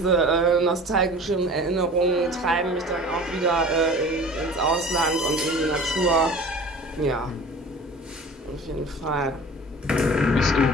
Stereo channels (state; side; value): normal; both; correlation 0.41